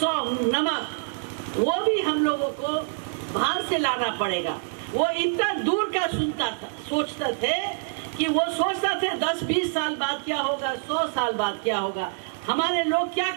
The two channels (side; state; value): left; silent; digital silence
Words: नमक वो भी हम लोगों को बाहर से लाना पड़ेगा। वो इतना दूर का सुनता था, सोचते थे कि वो सोचता थे 10-20 साल बाद क्या होगा, 100 साल बाद क्या होगा, हमारे लोग क्या